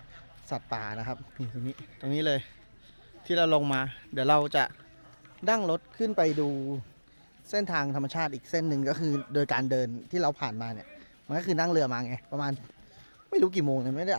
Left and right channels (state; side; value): inverted; both; correlation -1.00